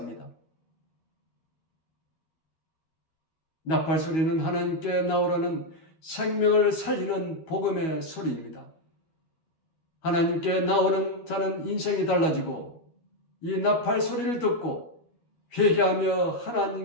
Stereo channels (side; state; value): right; late; 12 ms